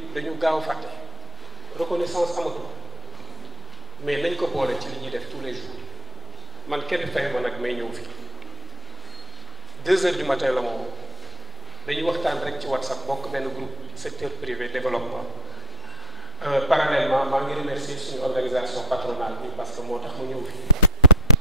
dañu gaaw fàtte reconnaissance amatul mais nañ ko boole ci li ñuy def tous les jours man kenn fay ma nag may ñëw fi 2 heures du matin la moom dañuy waxtaan rek ci WhatsApp bokk benn groupe secteur privé développement parallèlement maa ngi remercier suñu organisation patronale bi parce que moo tax mu ñëw fi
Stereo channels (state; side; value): normal; both; correlation 0.29